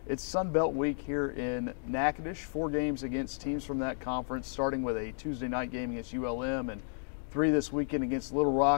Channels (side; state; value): right; silent; digital silence